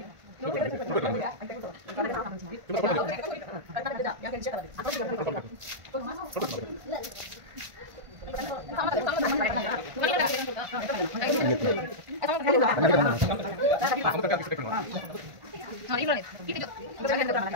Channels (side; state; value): left; late; 1.5 ms